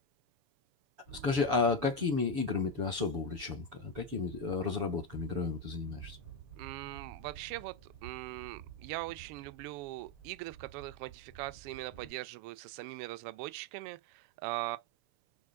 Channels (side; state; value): left; late; 7.0 ms